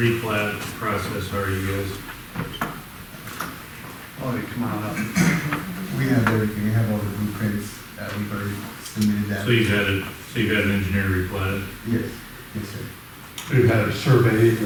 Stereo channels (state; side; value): identical; both; correlation 1.00